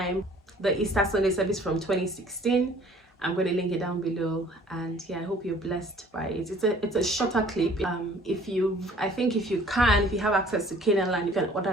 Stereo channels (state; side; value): normal; both; correlation 0.54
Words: the Easter Sunday service from 2016. I'm going to link it down below, and yeah, I hope you're blessed by it. It's a shorter clip. If you have access to Canaan, you can